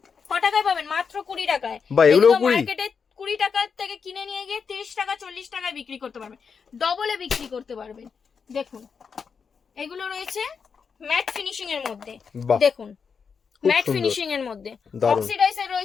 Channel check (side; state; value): right; quieter; 6.0 dB